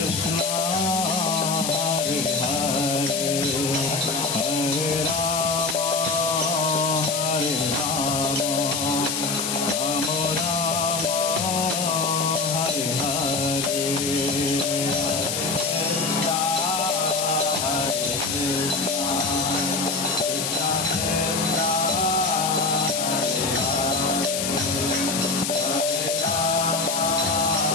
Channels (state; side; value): noise; left; hiss, 1 dB below the sound